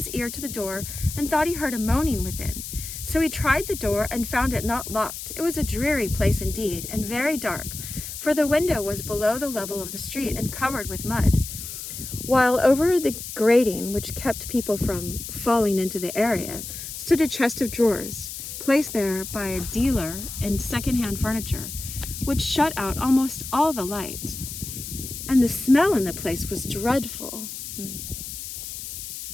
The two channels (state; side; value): noise; left; hiss, 9 dB below the sound